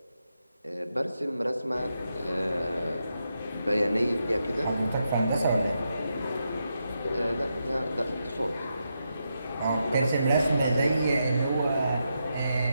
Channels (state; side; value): inverted; both; correlation -0.85